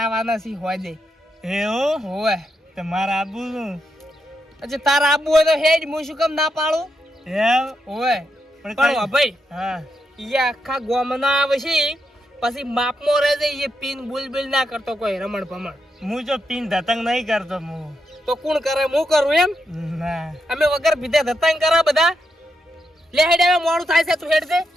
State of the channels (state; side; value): normal; both; correlation 0.83